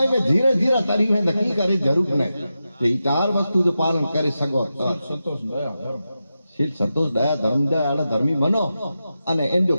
में धीरे धीरे तरी है नकी करे जरूर नहीं ये चार वस्तु जो पालन करे सको संतोष दया धर्म शील संतोष दया धर्म दया धर्मी बनो अने इन जो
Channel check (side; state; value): both; inverted; correlation -0.91